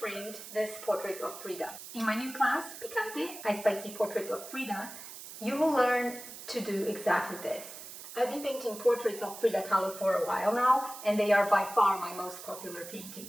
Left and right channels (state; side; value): noise; right; hiss, 13 dB below the sound